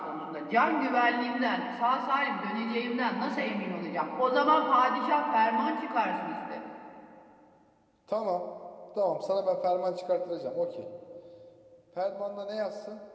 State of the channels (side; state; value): both; identical; correlation 1.00